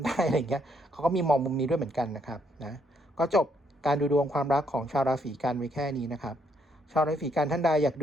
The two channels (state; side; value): normal; both; correlation 0.72